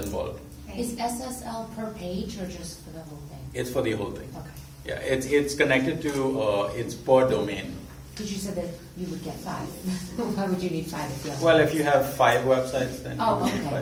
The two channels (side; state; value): both; identical; correlation 1.00